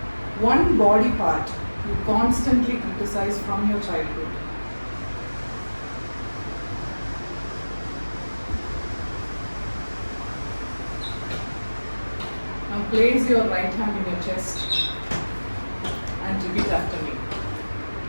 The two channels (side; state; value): both; inverted; correlation -1.00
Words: one body part you constantly criticize from your childhood. Now place your right hand in your chest and repeat after me.